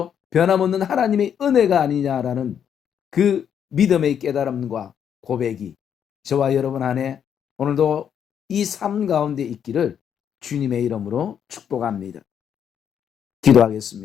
변함없는 하나님의 은혜가 아니냐라는 그 믿음의 깨달음과 고백이 저와 여러분 안에 오늘도 이 삶 가운데 있기를 주님의 이름으로 축복합니다.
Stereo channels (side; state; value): right; quieter; 8.5 dB